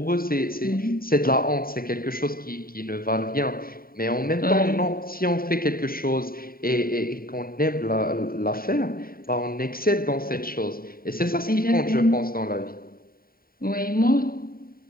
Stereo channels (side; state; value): right; late; 0.43 ms